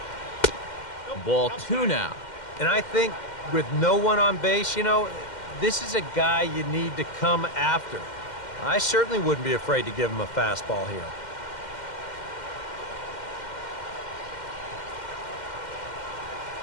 Ball 2 now. And I think with no one on base, you know, this is a guy you need to come after. I certainly wouldn't be afraid to give him a fastball here.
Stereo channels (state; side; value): late; right; 2.1 ms